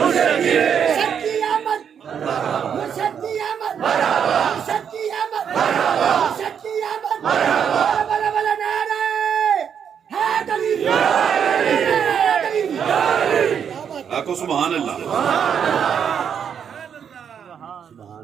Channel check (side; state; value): left; quieter; 7.8 dB